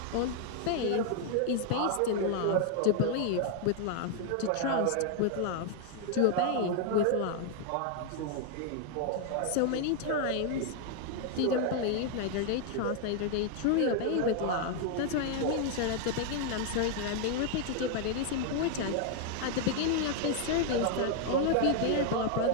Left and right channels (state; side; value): different; both; correlation 0.00